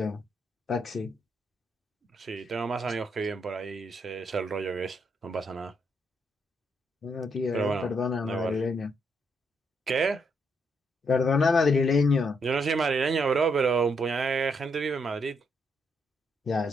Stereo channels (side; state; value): both; normal; correlation 0.76